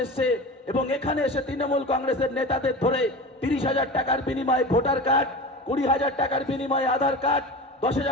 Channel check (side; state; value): both; normal; correlation 0.31